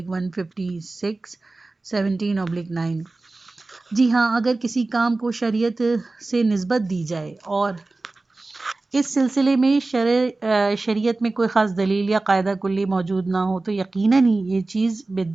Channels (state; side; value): quieter; left; 3.3 dB